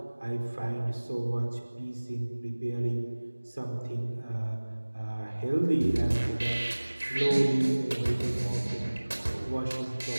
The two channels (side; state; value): both; inverted; correlation -1.00